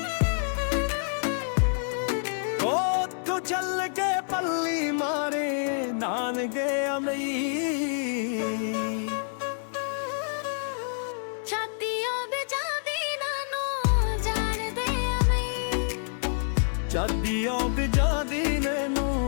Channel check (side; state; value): right; silent; 60 dB below the other